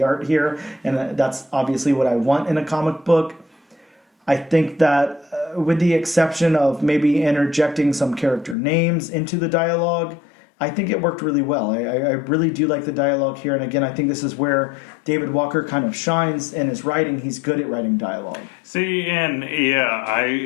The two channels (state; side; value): drops out; right; at 8.6 s